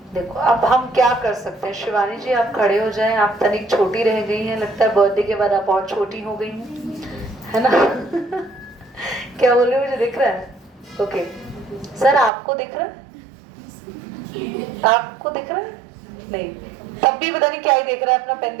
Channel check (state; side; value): drops out; left; at 12.3 s